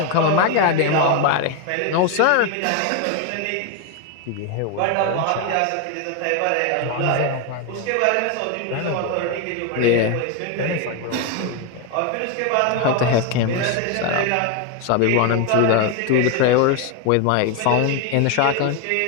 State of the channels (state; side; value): different; both; correlation 0.02